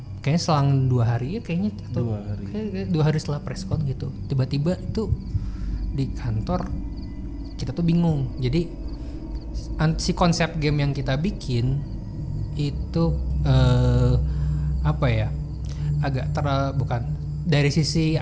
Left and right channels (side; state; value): both; identical; correlation 1.00